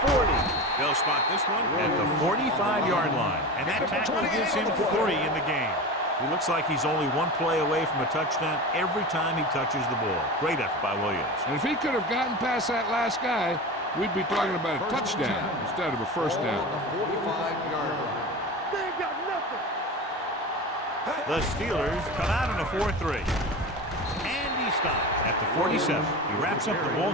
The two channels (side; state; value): both; normal; correlation 0.28